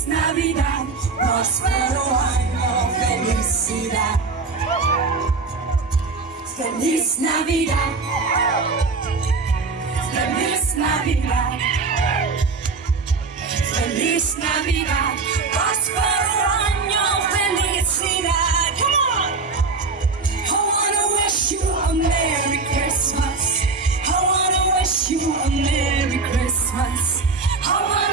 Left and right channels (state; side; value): quieter; left; 4.2 dB